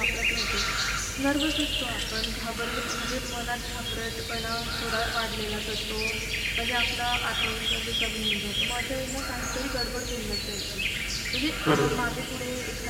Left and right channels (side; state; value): both; identical; correlation 1.00